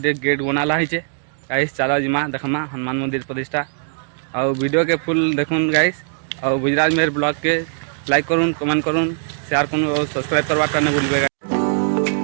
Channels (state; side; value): silent; left; digital silence